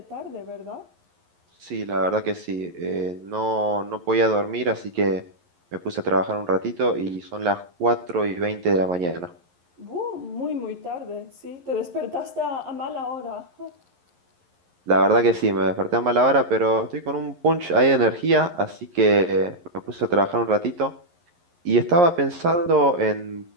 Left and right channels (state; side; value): late; left; 11 ms